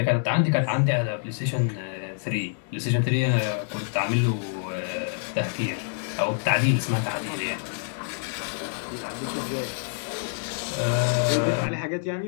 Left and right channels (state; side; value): silent; right; digital silence